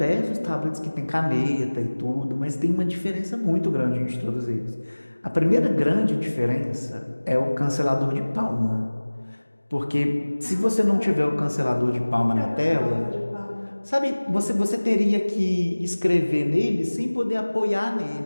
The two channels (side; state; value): both; inverted; correlation -1.00